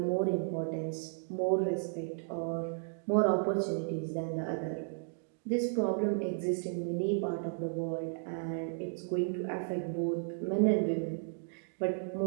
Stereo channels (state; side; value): silent; left; digital silence